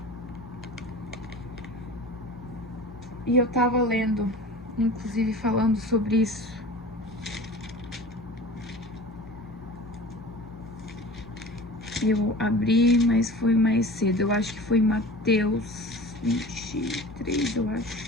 E eu tava lendo, inclusive falando sobre isso. Eu abri, mas foi mais cedo. Eu acho que foi Mateus 23, eu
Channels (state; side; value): normal; both; correlation 0.38